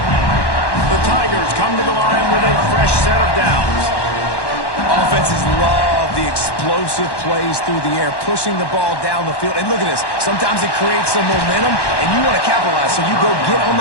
The Tigers come to the line with a fresh set of downs. Offenses love the explosive plays through the air, pushing the ball down the field. And look at this. Sometimes it creates some momentum, and you want to capitalize. So you go get on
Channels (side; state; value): right; late; 1.1 ms